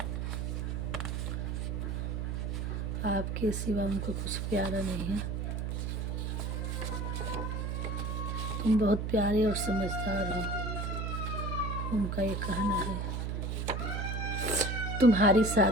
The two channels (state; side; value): noise; right; hum, 2 dB below the sound